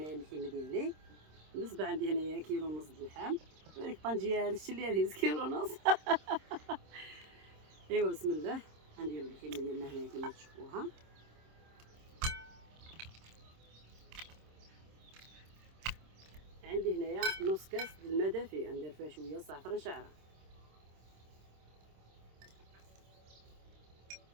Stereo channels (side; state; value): left; late; 26 ms